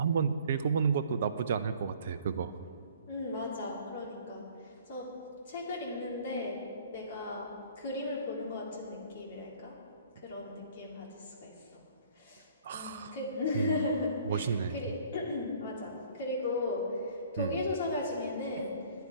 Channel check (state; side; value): inverted; both; correlation -0.54